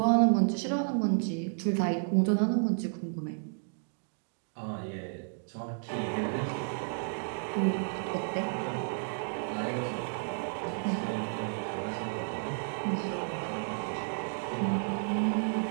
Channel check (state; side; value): silent; left; digital silence